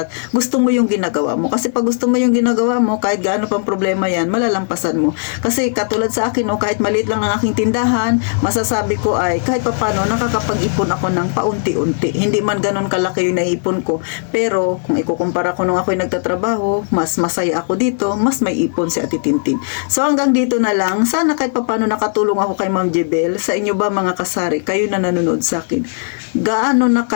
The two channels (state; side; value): silent; right; digital silence